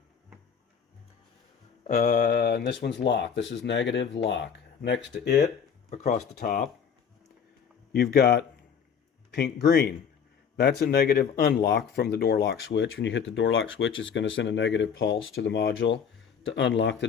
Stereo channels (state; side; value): quieter; right; 7.2 dB